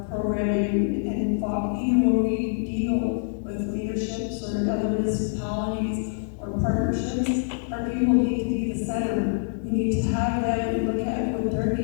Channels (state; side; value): silent; right; digital silence